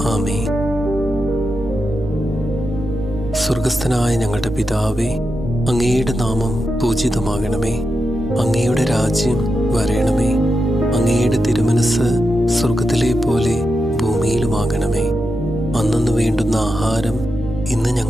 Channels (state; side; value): noise; right; hum, 14 dB below the sound